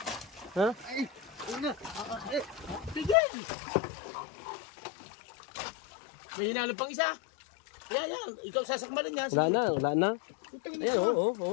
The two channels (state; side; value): drops out; right; at 3.2 s